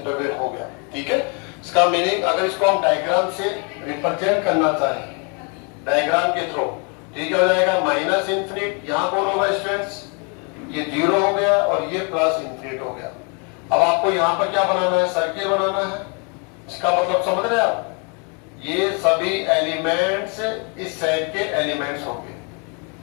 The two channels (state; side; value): quieter; right; 35.6 dB